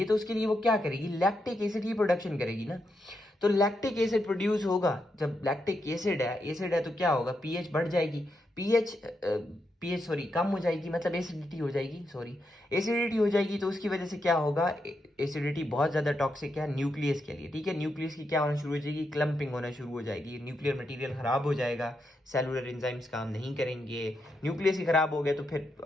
तो उसके लिए वो क्या करेगी, लैक्टिक एसिड की प्रोडक्शन करेगी ना। तो लैक्टिक एसिड प्रोड्यूस होगा, जब लैक्टिक एसिड है तो क्या होगा, पीएच बढ़ जाएगी, पीएच कम हो जाएगी, मतलब एसिडिटी हो जाएगी, एसिडिटी हो जाएगी। तो उसकी वजह से क्या होगा, एसिडिटी बहुत ज्यादा टॉक्सिक है न्यूक्लियस के लिए, ठीक है। न्यूक्लियस की क्या होना शुरू हो जाएगी, क्लम्पिंग होना शुरू हो जाएगी, न्यूक्लियर मटेरियल खराब हो जाएगा, सेलुलर एंजाइम्स काम नहीं करेंगे। न्यूक्लियस ही खराब हो गया तो फिर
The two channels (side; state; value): both; normal; correlation 0.83